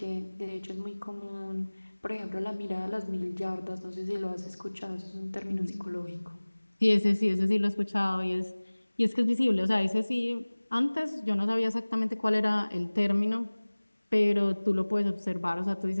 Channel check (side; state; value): both; inverted; correlation -1.00